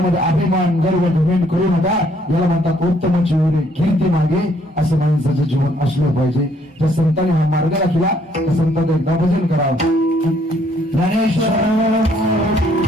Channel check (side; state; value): both; normal; correlation 0.66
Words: अभिमान गर्व धुमेन करू नका. याला म्हणतात उत्तम चिवरे कीर्ती मागे, असं माणसाचं जीवन असलं पाहिजे. ज्या संतांनी हा मार्ग राखला त्या संतांचं एकदा भजन करावं. ज्ञानेश्वर